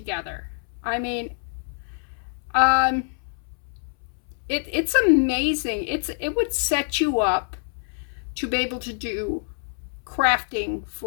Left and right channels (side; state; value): right; silent; 61 dB below the other